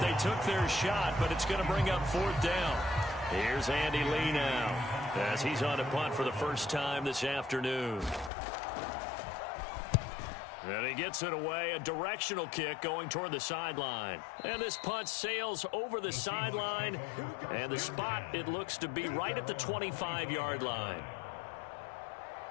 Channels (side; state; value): right; drops out; at 8.3 s